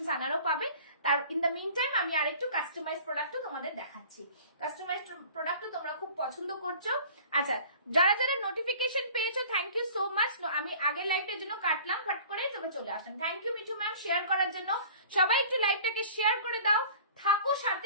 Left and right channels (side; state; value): both; inverted; correlation -0.46